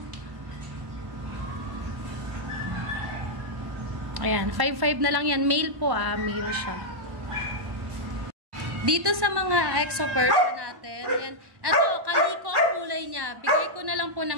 Ayan, 5,500 na lang yan. Male po male siya. Dito sa mga exo Persian natin, yan. Ito, Calico ang kulay niya. Bigay ko na lang po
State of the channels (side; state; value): left; late; 1.1 ms